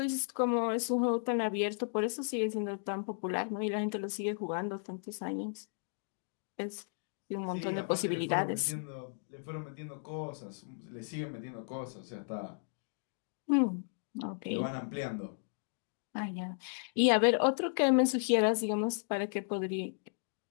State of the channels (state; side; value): silent; right; digital silence